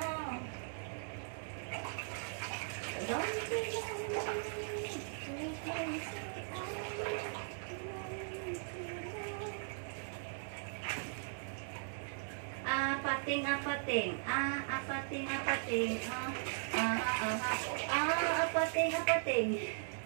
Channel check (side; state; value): left; silent; 52 dB below the other